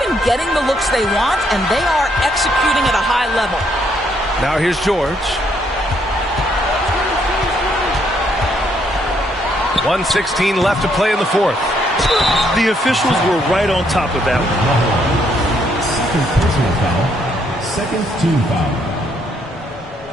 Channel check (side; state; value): both; normal; correlation 0.71